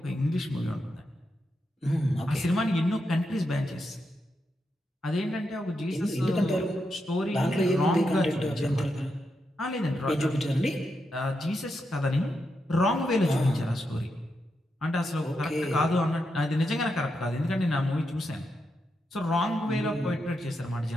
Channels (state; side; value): normal; both; correlation 0.85